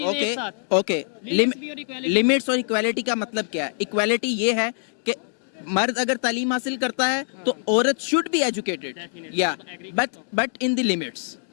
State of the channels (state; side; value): silent; right; 62 dB below the other